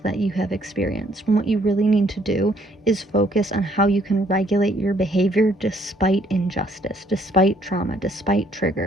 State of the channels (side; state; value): both; normal; correlation 0.65